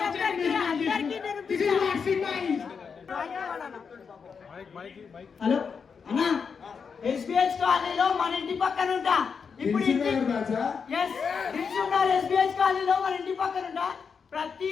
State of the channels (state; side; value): quieter; right; 6.0 dB